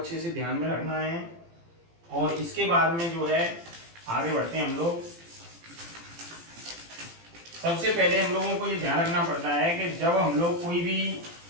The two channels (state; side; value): late; left; 18 ms